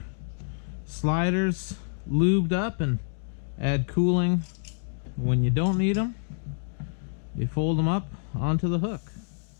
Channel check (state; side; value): silent; right; digital silence